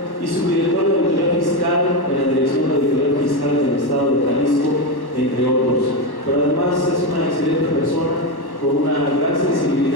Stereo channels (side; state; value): right; late; 1.1 ms